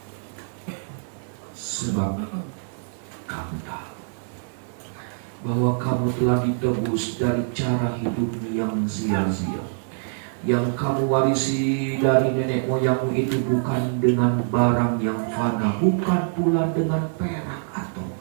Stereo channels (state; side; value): silent; left; digital silence